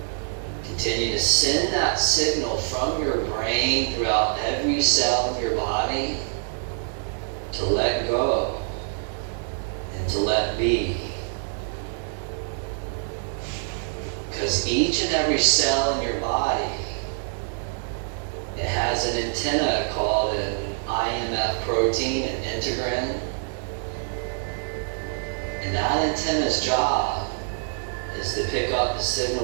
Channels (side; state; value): left; silent; digital silence